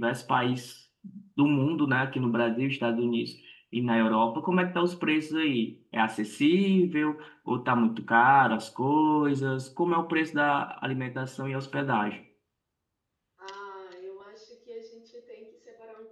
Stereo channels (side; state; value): both; identical; correlation 1.00